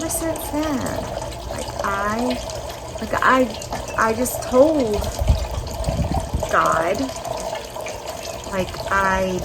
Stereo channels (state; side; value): identical; both; correlation 1.00